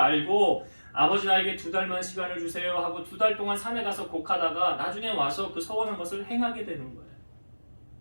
아버지 나에게 2달만 시간을 주세요 하고 2달 동안 산에 가서 곡하다가 나중에 와서 그 서원한 것을 행하게 되는 거예요.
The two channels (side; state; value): both; inverted; correlation -1.00